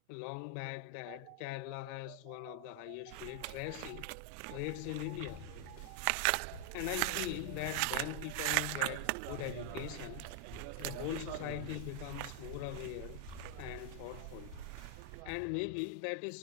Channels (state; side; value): different; both; correlation 0.00